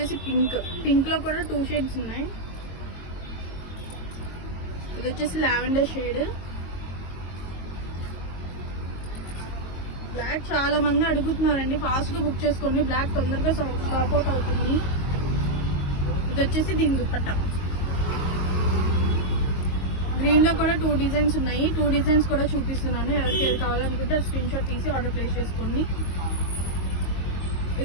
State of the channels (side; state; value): right; late; 22 ms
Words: పింక్ లో కూడా 2 షేడ్స్ ఉన్నాయి. ఇది వచ్చేసి లావెండర్ షేడ్. బ్లాక్ చాలా మంది అడుగుతున్నారండి, ఫాస్ట్ గా బుక్ చేసుకోండి. బ్లాక్ తొందరగా స్టాక్ అవుట్ అవుతుంది. ఇది వచ్చేసి దీని దుపట్టా. గ్రీన్ లో కూడా 2 డిజైన్స్ ఉన్నాయి. 2 డిజైన్స్ కూడా చూపిస్తున్నాను. ఎవరికి ఏది కావాలనుకుంటే స్క్రీన్ షాట్ తీసి ఆర్డర్ ప్లేస్ చేసుకోండి.